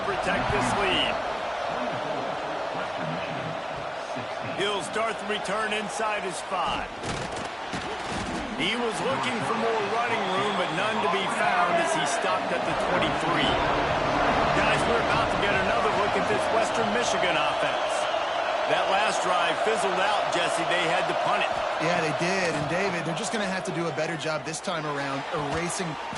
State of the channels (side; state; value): both; identical; correlation 1.00